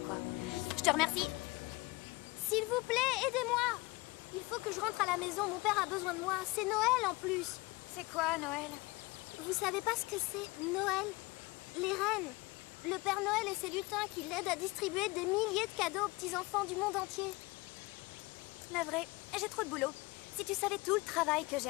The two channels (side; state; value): right; quieter; 23.6 dB